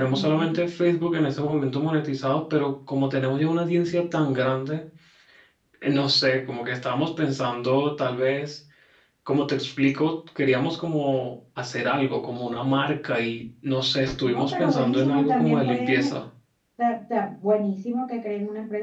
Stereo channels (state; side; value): identical; both; correlation 1.00